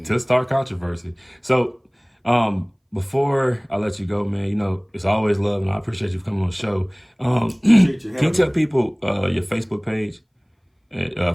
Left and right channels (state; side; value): identical; both; correlation 1.00